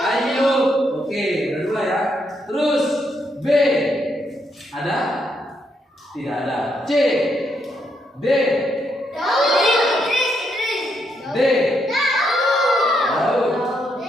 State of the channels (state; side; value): normal; both; correlation 0.77